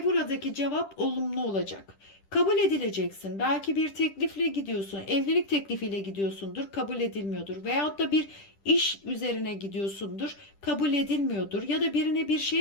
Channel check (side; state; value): right; late; 10 ms